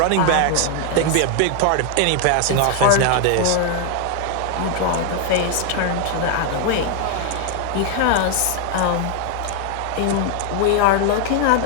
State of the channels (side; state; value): both; different; correlation 0.00